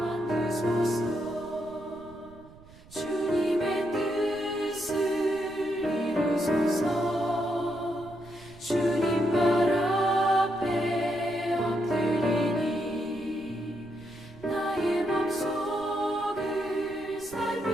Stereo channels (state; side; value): noise; right; rumble, 22 dB below the sound